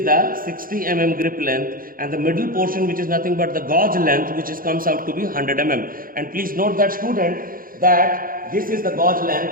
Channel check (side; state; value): left; late; 0.41 ms